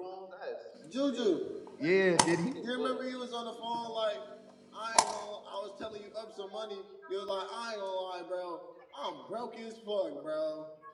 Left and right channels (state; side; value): identical; both; correlation 1.00